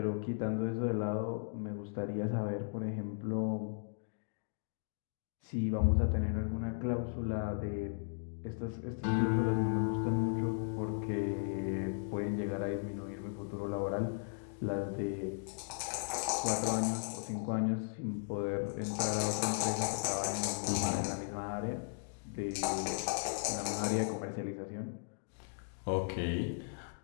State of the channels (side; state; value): right; silent; digital silence